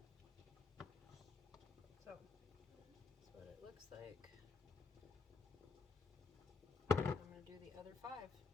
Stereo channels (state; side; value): quieter; right; 4.4 dB